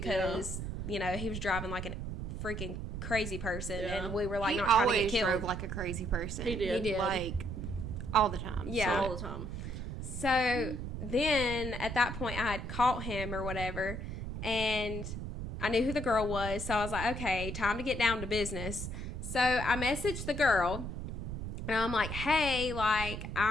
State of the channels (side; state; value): right; noise; rumble, 5 dB below the sound